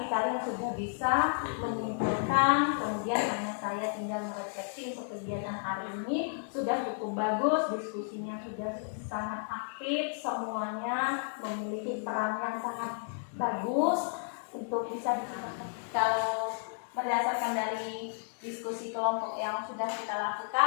kalian sudah bisa menyimpulkan. Kemudian hanya saya tinggal merefleksi untuk kegiatan hari ini. Sudah cukup bagus. Diskusinya sudah sangat aktif. Semuanya memiliki peran yang sangat bagus untuk bisa dilakukan. Kalau berdasarkan dari diskusi kelompok yang sudah kita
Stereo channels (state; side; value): silent; right; 55 dB below the other